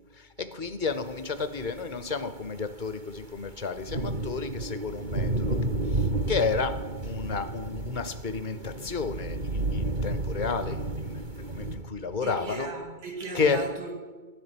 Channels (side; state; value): left; late; 2.2 ms